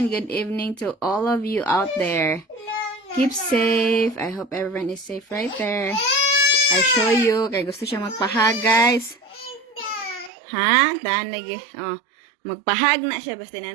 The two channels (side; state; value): left; drops out; at 10.3 s